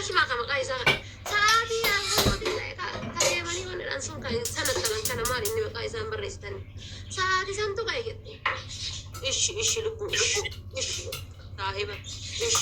maqaa maqaa isaa sa'aatii kadeemanii wanadhaan sun sana talan kana maal inni maqaa isaan barreessitanii sa'aatii santu ka'e jette ishi lubbuu ishi saahiba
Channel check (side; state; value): both; identical; correlation 1.00